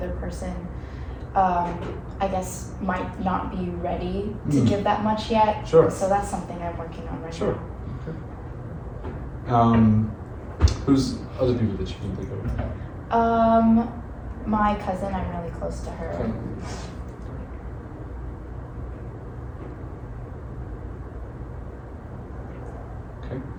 person, I guess, might not be ready to give that much yet. Sure. So that's something I'm working on right now. Okay. Who's other people that you can think of? My cousin, I'm really close to her. Okay.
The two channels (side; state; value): both; identical; correlation 1.00